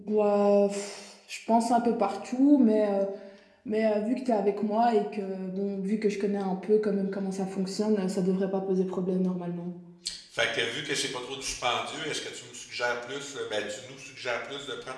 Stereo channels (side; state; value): both; identical; correlation 1.00